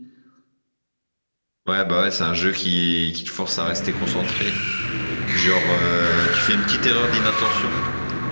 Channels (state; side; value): inverted; both; correlation -1.00